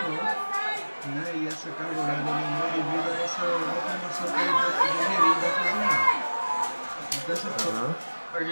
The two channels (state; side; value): inverted; both; correlation -1.00